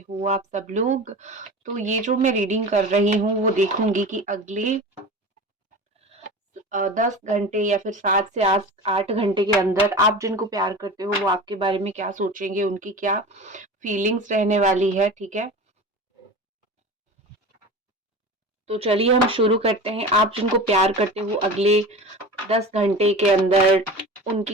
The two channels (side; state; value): both; normal; correlation 0.33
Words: हो आप सब लोग? तो ये जो मैं रीडिंग कर रही हूँ वो देखूंगी कि अगले 10 घंटे या फिर 7 से 8 घंटे के अंदर आप जिनको प्यार करते हो वो आपके बारे में क्या सोचेंगे, उनकी क्या फीलिंग्स रहने वाली है। ठीक है, तो चलिए हम शुरू करते हैं। आप जिनको प्यार करते हो अगले 10 घंटे के अंदर